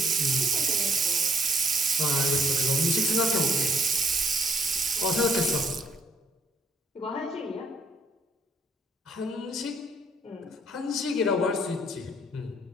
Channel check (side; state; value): both; normal; correlation 0.66